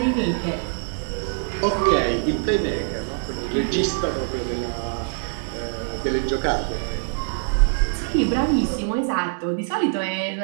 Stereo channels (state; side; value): silent; left; digital silence